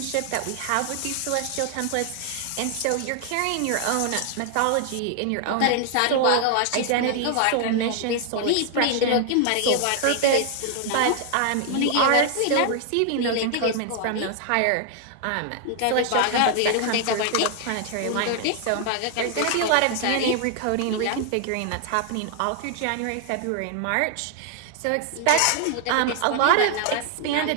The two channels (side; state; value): both; different; correlation 0.00